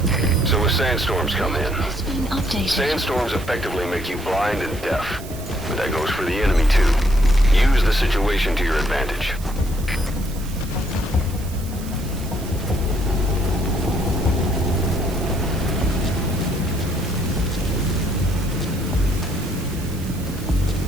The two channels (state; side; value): noise; right; hiss, 17 dB below the sound